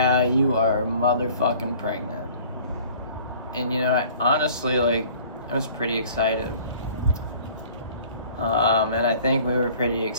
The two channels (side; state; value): both; inverted; correlation -0.50